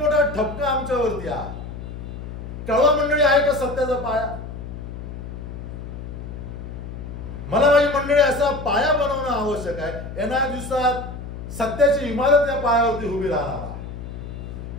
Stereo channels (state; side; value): noise; left; hum, 9 dB below the sound